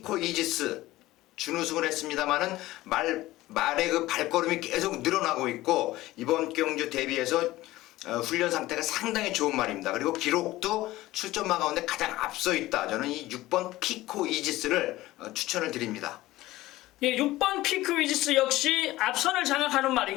이지스 준우승을 했습니다만은 말의 그 발걸음이 계속 늘어나고 있고 이번 경주 대비해서 훈련 상태가 상당히 좋은 말입니다. 그리고 기록도 출전마 가운데 가장 앞서 있다. 저는 이 6번 피코 이지스를 추천을 드립니다. 예, 6번 피크 위지스 역시 앞선을 장악하는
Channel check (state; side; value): quieter; right; 17.2 dB